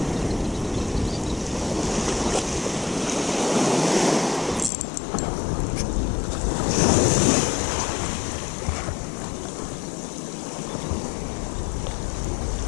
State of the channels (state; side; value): drops out; right; at 4.7 s